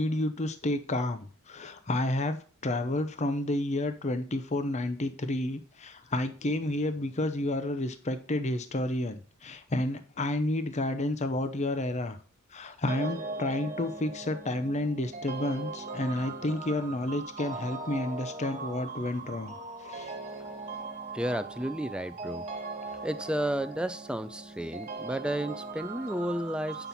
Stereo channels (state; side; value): normal; both; correlation 0.62